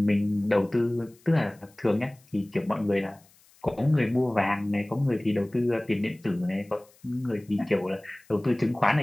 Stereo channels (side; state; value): left; noise; hiss, 30 dB below the sound